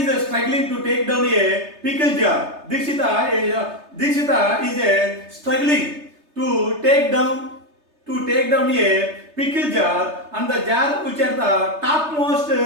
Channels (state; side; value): late; left; 3.3 ms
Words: struggling to take down a pickle jar. Dikshita is struggling to take down a pickle jar, and the jar which are the topmost